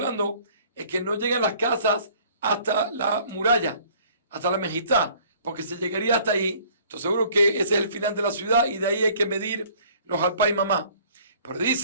es que no llegan las casas hasta la muralla, hasta la mejizá, porque se llegaría hasta ahí. Entonces seguro que ese es el final de la ciudad y de ahí hay que medir los alpay mamá. Pero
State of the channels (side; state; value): both; inverted; correlation -0.54